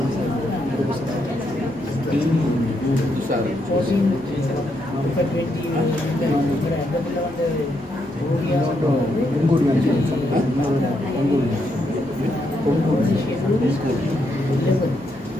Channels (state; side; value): normal; both; correlation 0.78